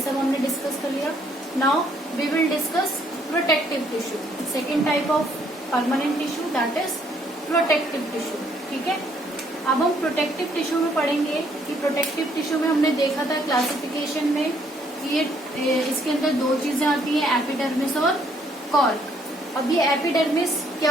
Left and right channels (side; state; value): both; normal; correlation 0.67